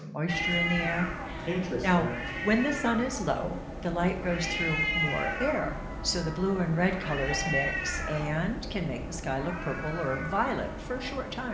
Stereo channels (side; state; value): both; identical; correlation 1.00